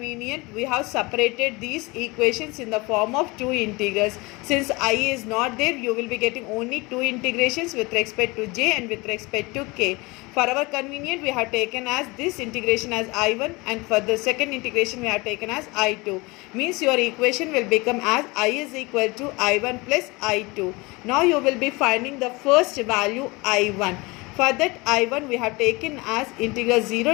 we have separated these equations in the form of two integrals. Since I is not there, you will be getting only two integrations with respect to j and with respect to k. For our convenience, we have taken as this integration as I1 and for the second integration we have taken as I2. Means your equation will become as I is equal to I1 plus I2. Now you will be finding the first value I1. For that I1 we have taken as integral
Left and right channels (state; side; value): quieter; right; 24.6 dB